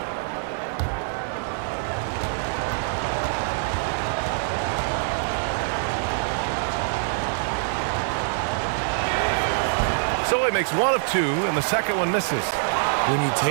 So he makes 1 of 2, and the second one misses. When you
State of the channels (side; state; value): left; silent; digital silence